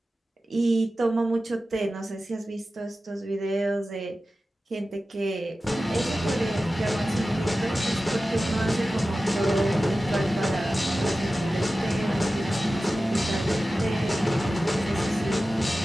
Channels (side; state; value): both; normal; correlation 0.95